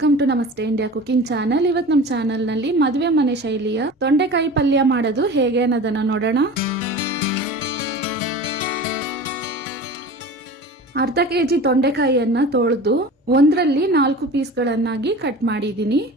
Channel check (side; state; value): both; normal; correlation 0.36